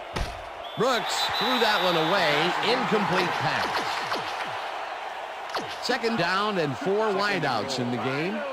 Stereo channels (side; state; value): both; identical; correlation 1.00